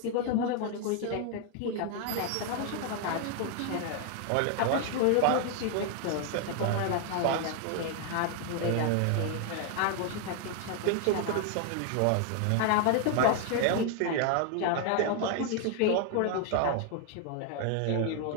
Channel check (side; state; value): both; different; correlation 0.00